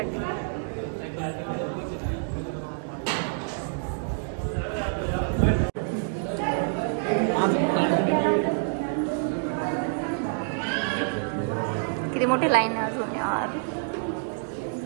किती मोठी लाईन आहे अजून यार.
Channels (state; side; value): silent; left; digital silence